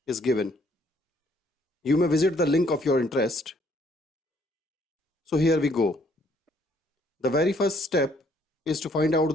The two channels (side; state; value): both; normal; correlation 0.65